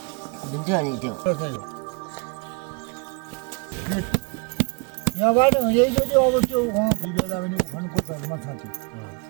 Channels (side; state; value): left; quieter; 32.4 dB